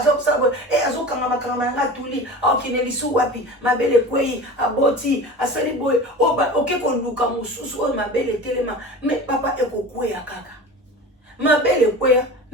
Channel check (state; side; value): normal; both; correlation 0.34